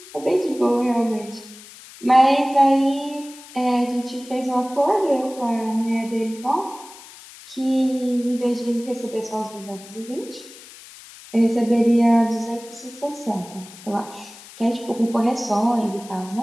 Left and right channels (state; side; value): noise; left; hiss, 19 dB below the sound